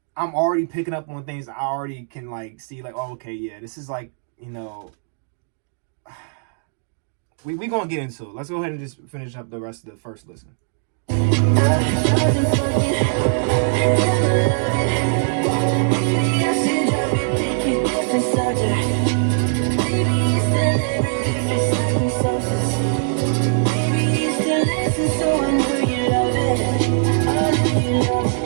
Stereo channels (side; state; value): left; silent; digital silence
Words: I'm already picking up on things I already can like see, like, oh, okay, yeah, this is like, we gonna get into it. Let's go ahead and just finish up the rest of the first listen.